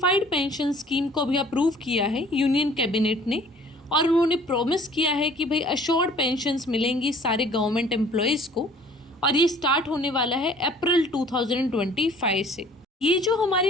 पेंशन स्कीम को अभी अप्रूव किया है यूनियन कैबिनेट ने, और उन्होंने प्रॉमिस किया है कि भाई अश्योर्ड पेंशन्स मिलेंगी सारे गवर्नमेंट एम्प्लॉयज़ को, और ये स्टार्ट होने वाला है अप्रैल 2025 से। ये जो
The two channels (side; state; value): both; normal; correlation 0.53